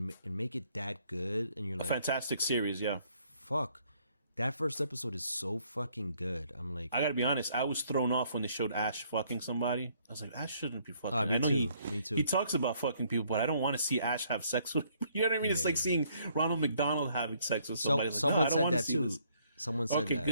make it that good, and you're like, a fantastic series, yeah. Fuck. That first episode is so fucking good. I'm like, I gotta be honest, I was thrown off when they showed Ash fucking somebody. I was like, Ash shouldn't be fucking. Me too. He talks about fucking people, but I don't want to see Ash have sex with people. You know what I mean? It's like seeing Ronald McDonald having sex with somebody. Someone said that too. Someone said that.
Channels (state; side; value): inverted; both; correlation -0.67